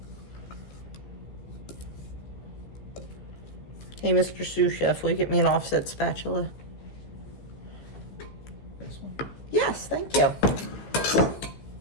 Hey, Mr. Sous Chef, will you get me an offset spatula? This one? Yes, thank you.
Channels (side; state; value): right; late; 15 ms